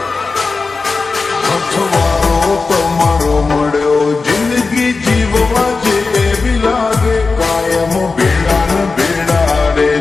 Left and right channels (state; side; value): quieter; right; 4.2 dB